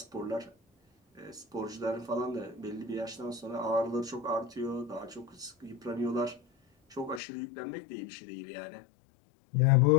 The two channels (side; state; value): right; drops out; at 7.2 s